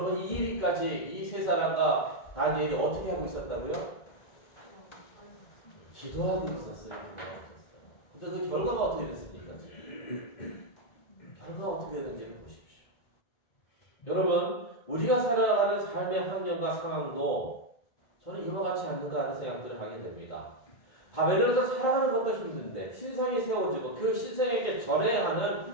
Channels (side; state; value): right; late; 2.3 ms